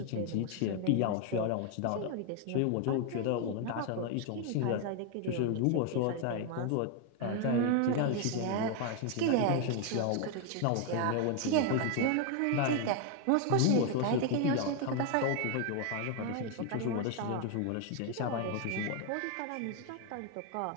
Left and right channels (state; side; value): different; both; correlation 0.01